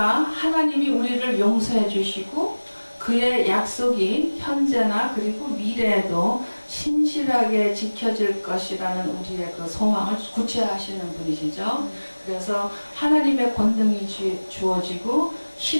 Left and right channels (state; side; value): inverted; both; correlation -1.00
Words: 우리를 용서해 주시고 그의 약속이 현재나 그리고 미래에도 신실하게 지켜질 것이라는 우리의 그 소망을 구체화하시는 분이시죠. 그래서 하나님의 권능이 주어지고